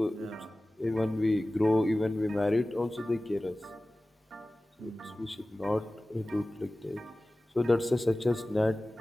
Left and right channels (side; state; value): both; normal; correlation 0.97